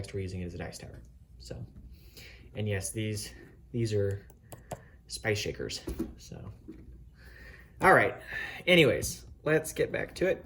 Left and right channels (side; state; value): both; identical; correlation 1.00